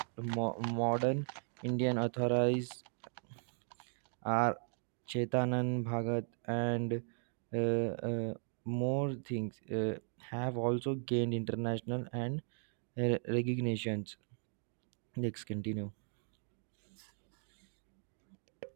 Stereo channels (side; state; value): left; silent; 53 dB below the other